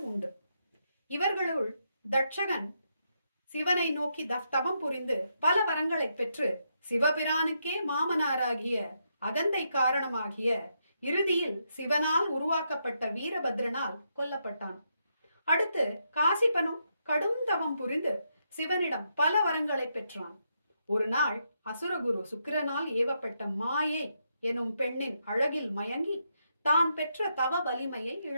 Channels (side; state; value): both; inverted; correlation -0.80